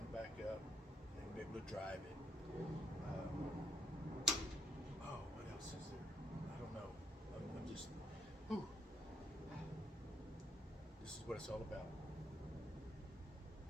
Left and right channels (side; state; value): both; normal; correlation 0.75